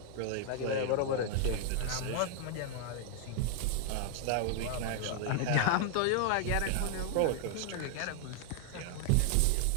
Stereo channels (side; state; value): both; different; correlation 0.00